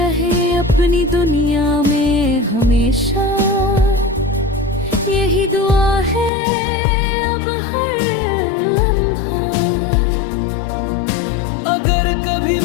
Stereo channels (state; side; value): drops out; right; at 6.3 s